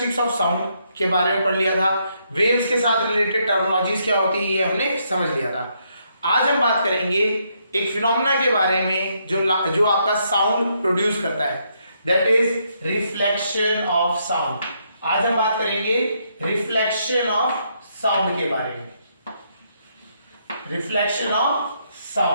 ऑफ साउंड के बारे में पढ़ लिया था। वेव्स के साथ रिलेटेड टर्मिनोलॉजीज क्या होती है ये हमने समझ लिया था। आज हम बात करेंगे एक फिनोमेना के बारे में जो आपका साउंड प्रोड्यूस करता है, that is reflection of sound. आज हम बात करेंगे रिफ्लेक्शन ऑफ साउंड के बारे में। Reflection of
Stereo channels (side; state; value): both; inverted; correlation -0.75